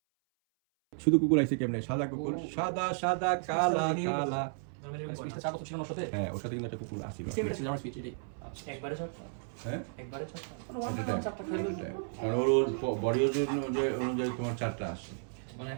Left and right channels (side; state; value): left; silent; 56 dB below the other